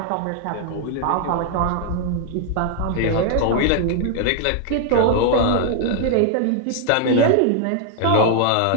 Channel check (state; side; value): different; both; correlation 0.00